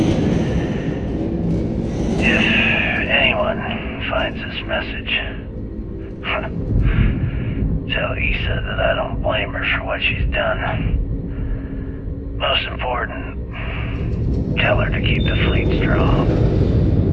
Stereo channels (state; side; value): identical; both; correlation 1.00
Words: If anyone finds this message, tell Issa that I don't blame her for what she's done. Most important, tell her to keep the fleet strong.